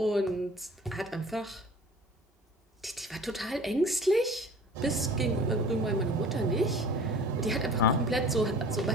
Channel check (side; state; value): both; normal; correlation 0.44